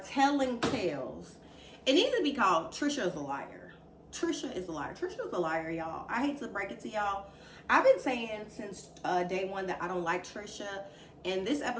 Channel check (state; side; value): identical; both; correlation 1.00